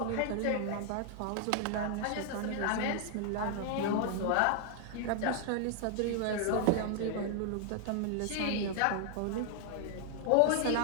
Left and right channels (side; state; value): both; different; correlation 0.00